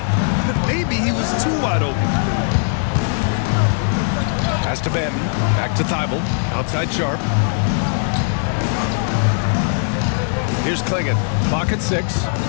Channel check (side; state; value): right; silent; 66 dB below the other